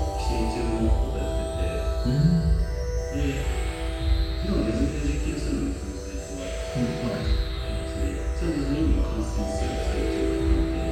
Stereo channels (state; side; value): identical; both; correlation 1.00